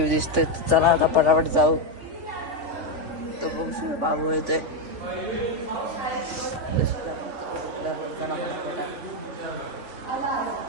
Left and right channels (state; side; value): late; left; 3.4 ms